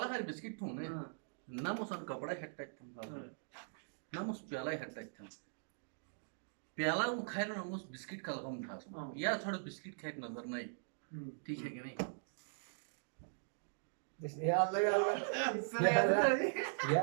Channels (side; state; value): left; silent; digital silence